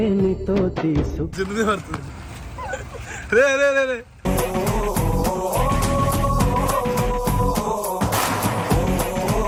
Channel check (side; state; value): both; identical; correlation 1.00